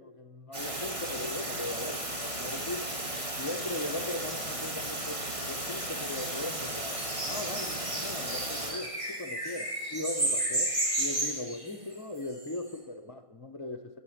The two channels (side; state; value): right; late; 1.5 ms